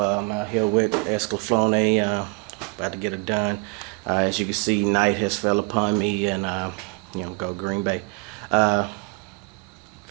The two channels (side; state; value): left; quieter; 30.6 dB